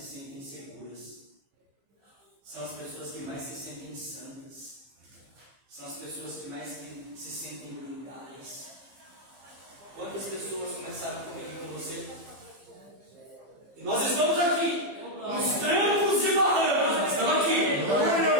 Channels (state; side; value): late; left; 15 ms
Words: sentem seguras, são as pessoas que mais se sentem santas, são as pessoas que mais se sentem blindadas. Quantas pessoas começaram comigo com você? E nós estamos aqui, nos trancos e barrancos, nós estamos aqui.